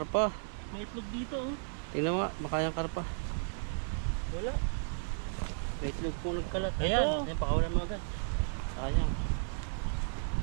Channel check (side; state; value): left; silent; digital silence